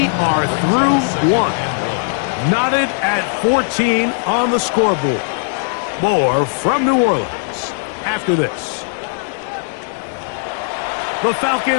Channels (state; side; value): silent; right; digital silence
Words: are through 1. Knotted at 14 on the scoreboard. More from New Orleans after this. The